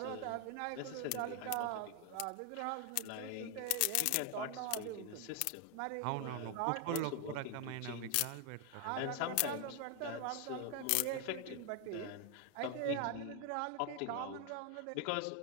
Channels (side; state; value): both; different; correlation 0.00